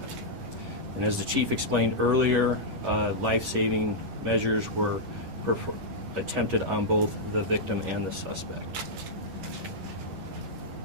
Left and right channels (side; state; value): left; late; 11 ms